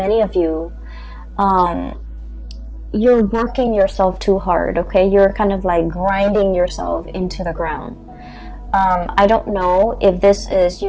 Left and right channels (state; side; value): identical; both; correlation 1.00